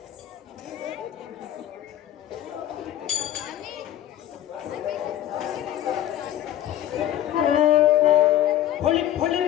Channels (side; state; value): right; quieter; 12.1 dB